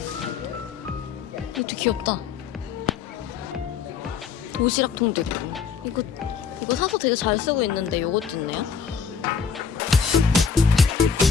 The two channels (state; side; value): quieter; right; 6.3 dB